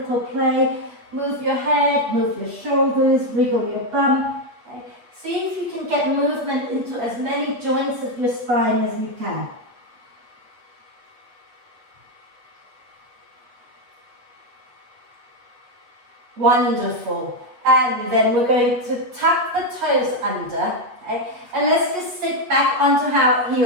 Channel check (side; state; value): left; late; 8.3 ms